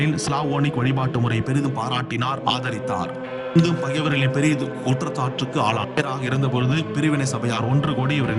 ஸ்லாவோனிக் வழிபாட்டு முறையை பெரிதும் பாராட்டினார், ஆதரித்தார். இங்கும் பகைவர்களின் பெரிய குற்றச்சாட்டுக்கு ஆளாக இருந்தபொழுது பிரிவினை சபையார் ஒன்று கூடி இவரை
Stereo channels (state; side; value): identical; both; correlation 1.00